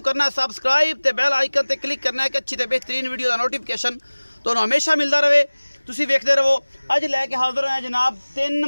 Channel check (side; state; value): both; inverted; correlation -1.00